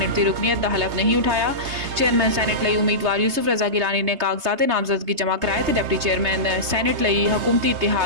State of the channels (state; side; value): late; left; 3.3 ms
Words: की रुकनीत का हलफ नहीं उठाया। चेयरमैन सैनेट लई उम्मीदवार यूसुफ रजा गिलानी ने कागजात नामजदगी जमा कराए तो डिप्टी चेयरमैन सैनेट लई हुकूमती